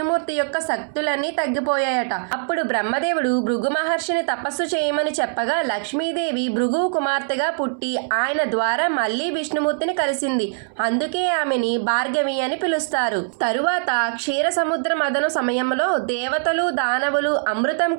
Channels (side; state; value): left; silent; 64 dB below the other